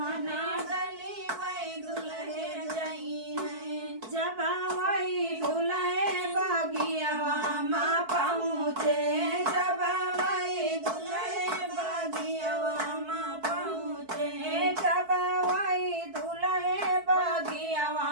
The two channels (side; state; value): left; late; 4.6 ms